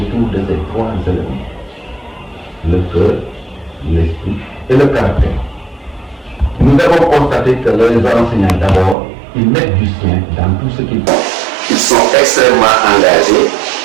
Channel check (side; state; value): left; drops out; at 9.0 s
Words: de ces 3 éléments. Le cœur, l'esprit et le caractère. Nous avons constaté que les enseignants, d'abord, ils mettent du sien dans tout ce qu'ils font. Ils sont extrêmement engagés.